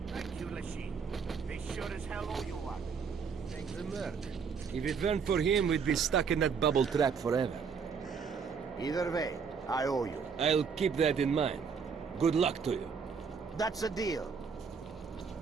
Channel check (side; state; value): left; quieter; 6.0 dB